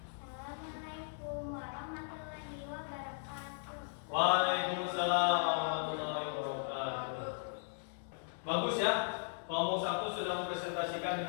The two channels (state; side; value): silent; right; digital silence